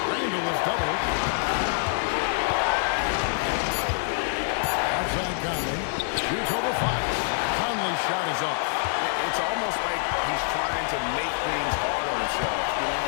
Randall is doubled. Outside Conley. Shoots over Fox. Conley's shot is off. It's almost like he's trying to make things hard on himself. You know,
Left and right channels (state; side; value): silent; right; 61 dB below the other